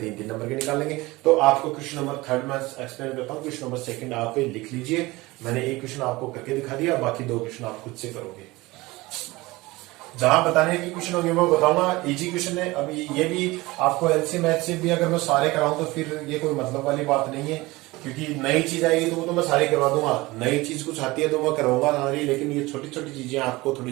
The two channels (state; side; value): quieter; left; 21.0 dB